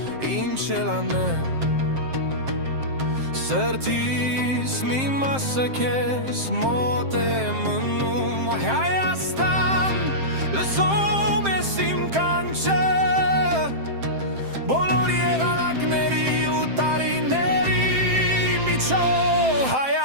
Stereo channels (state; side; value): late; left; 7.6 ms